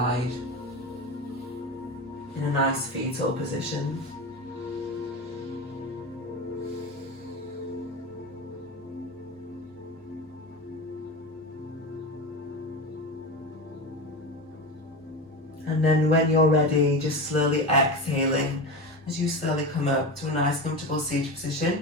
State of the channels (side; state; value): both; normal; correlation 0.24